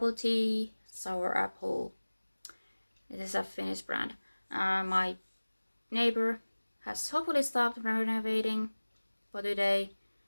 tea sour apple. This is a Finnish brand. My neighbor has hopefully stopped renovating for today,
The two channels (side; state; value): both; inverted; correlation -1.00